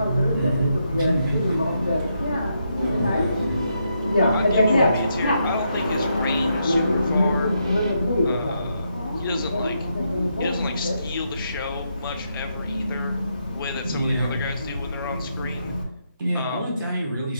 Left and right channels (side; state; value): both; inverted; correlation -0.80